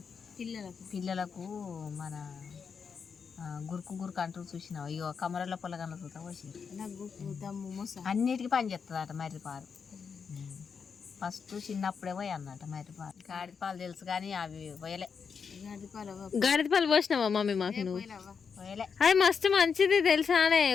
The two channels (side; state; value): right; quieter; 6.1 dB